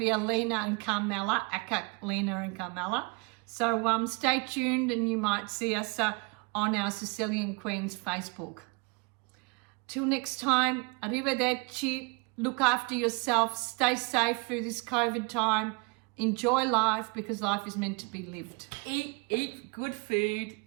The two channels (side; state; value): left; quieter; 30.2 dB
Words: a Lena and Carmela, Aka, Lena and Carmela. So stay tuned and you might see us on our Sicilian Queens Facebook. Till next time, arrivederci. Look after yourself, stay safe through this COVID time, enjoy life because life is meant to be lived. Eat good food.